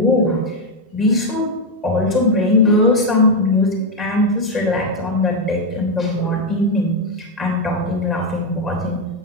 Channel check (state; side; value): normal; both; correlation 0.05